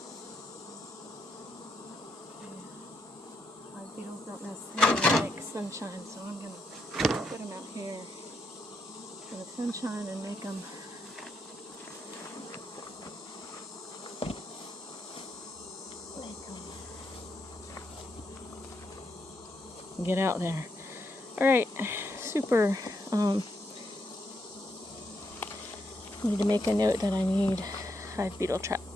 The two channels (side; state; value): both; normal; correlation 0.80